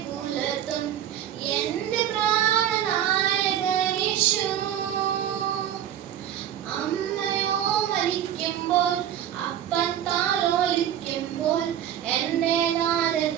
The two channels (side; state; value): left; quieter; 10.5 dB